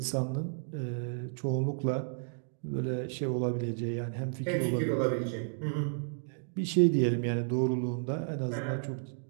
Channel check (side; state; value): left; silent; digital silence